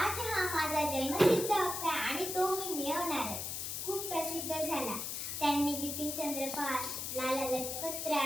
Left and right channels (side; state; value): left; noise; hiss, 4 dB below the sound